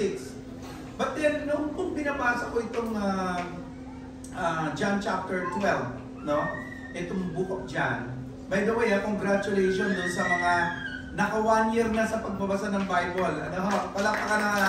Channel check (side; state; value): both; identical; correlation 1.00